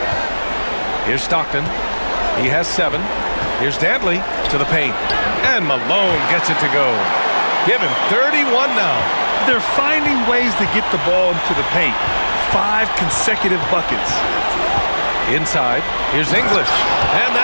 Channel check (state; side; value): inverted; both; correlation -1.00